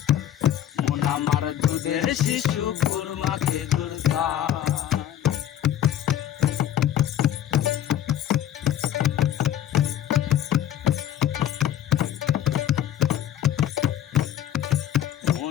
মন আমার দুধের শিশু খুরমা খেজুর চায়।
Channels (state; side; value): quieter; right; 11.0 dB